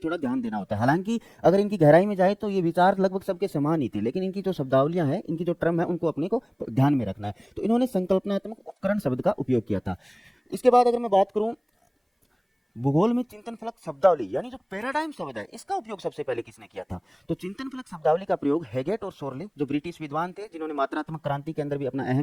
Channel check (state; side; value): identical; both; correlation 1.00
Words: ध्यान देना होता है। हालांकि अगर इनकी गहराई में जाए तो ये विचार लगभग सबके समान ही थे, लेकिन इनकी जो शब्दावलियां हैं, इनकी जो टर्म है, उनको अपने को ध्यान में रखना है। तो इन्होंने संकल्पनात्मक उपकरण शब्द का उपयोग किया था। इसके बाद अगर मैं बात करूं भूगोल में चिंतन फलक शब्दावली यानी जो पैराडाइम शब्द है, इसका उपयोग सबसे पहले किसने किया था? तो चिंतन फलक शब्दावली का प्रयोग हैगेट और शोरले, जो ब्रिटिश विद्वान थे, जिन्होंने मात्रात्मक क्रांति के अंदर भी अपना